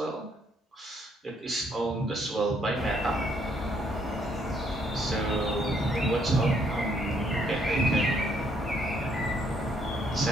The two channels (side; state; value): both; normal; correlation 0.69